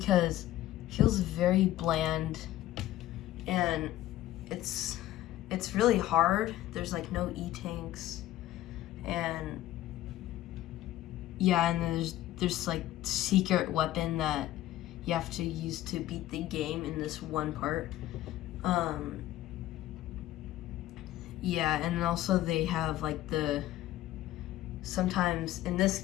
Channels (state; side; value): quieter; right; 14.6 dB